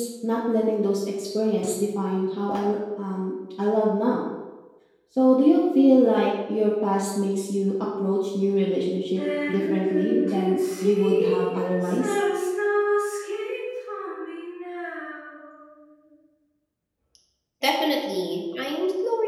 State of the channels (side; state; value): both; identical; correlation 1.00